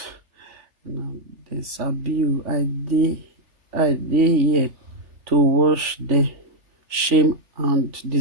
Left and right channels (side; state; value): left; late; 3.5 ms